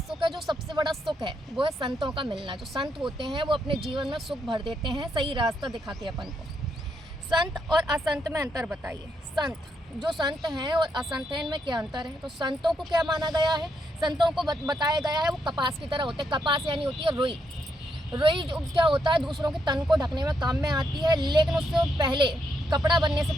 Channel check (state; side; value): normal; both; correlation 0.78